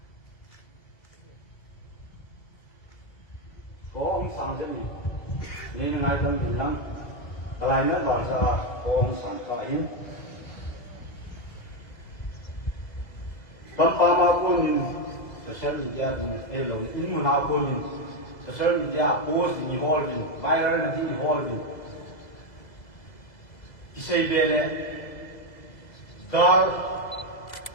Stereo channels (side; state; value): right; late; 2.0 ms